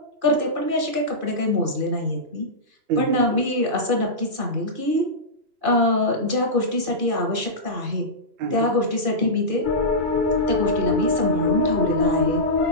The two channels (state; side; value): late; left; 2.5 ms